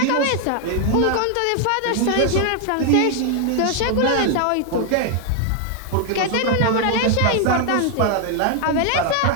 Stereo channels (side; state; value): both; different; correlation 0.00